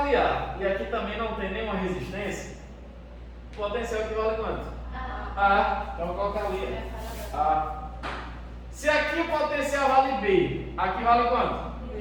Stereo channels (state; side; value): identical; both; correlation 1.00